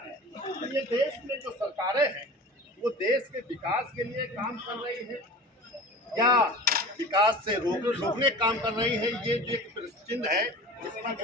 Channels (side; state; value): both; normal; correlation 0.37